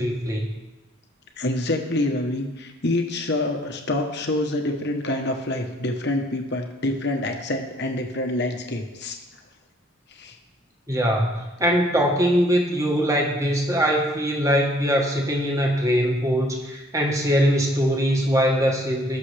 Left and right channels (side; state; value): both; normal; correlation 0.61